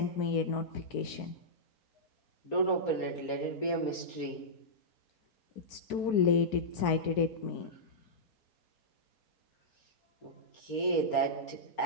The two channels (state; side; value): late; right; 4.6 ms